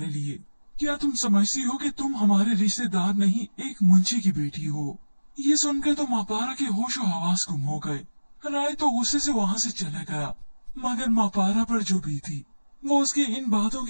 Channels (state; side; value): inverted; both; correlation -1.00